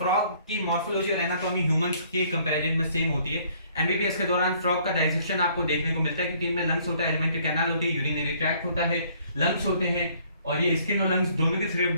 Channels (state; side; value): inverted; both; correlation -0.61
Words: की मॉर्फोलॉजी और एनाटॉमी ह्यूमंस के कंपैरिजन में सेम होती है। एमबीबीएस के दौरान फ्रॉग का डाइसेक्शन आपको देखने को मिलता है, क्योंकि इनमें लंग्स होता है, एलिमेंट्री कैनाल होती है, यूरिनरी ट्रैक्ट होता है, लंग्स होते हैं और ये स्किन और लंग्स दोनों के थ्रू